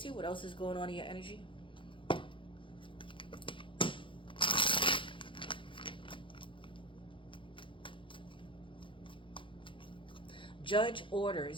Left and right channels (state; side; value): late; right; 0.25 ms